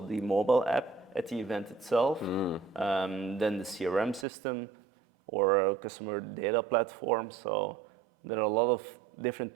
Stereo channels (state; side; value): drops out; left; at 4.2 s